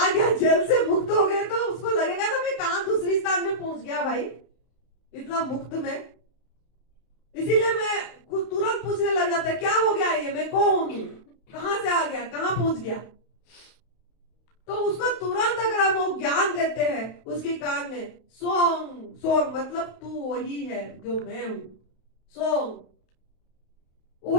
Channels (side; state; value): right; late; 31 ms